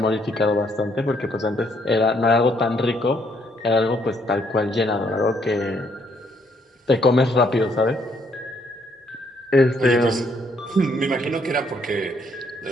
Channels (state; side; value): normal; both; correlation 0.69